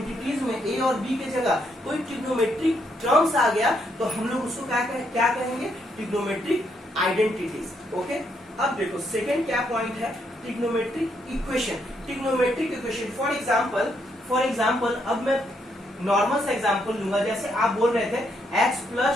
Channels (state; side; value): normal; both; correlation 0.75